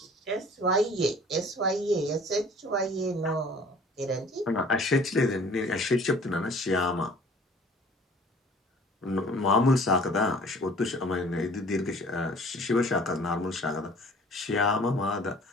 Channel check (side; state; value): both; normal; correlation 0.50